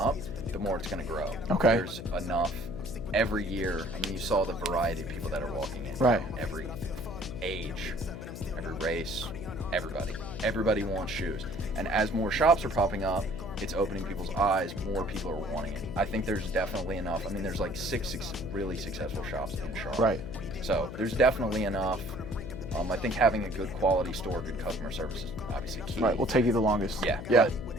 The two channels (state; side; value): noise; left; hum, 9 dB below the sound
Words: the more it's going to grow. Okay. There's enough every year. I mean, you saw the variety of people that are walking in. Right. Every age, every race, everybody. Everybody wants shoes. And as more shops are popping up, it's opening people's eyes. More people are wanting it. I think there's definitely enough. I mean, there's like six really successful shops in Charlotte. Right. So there's definitely enough. I think having a good quality store, good customer service is obviously key. Right, will take you the longest. Yeah. Yeah.